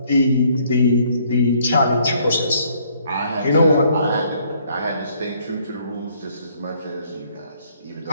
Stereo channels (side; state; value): both; inverted; correlation -0.65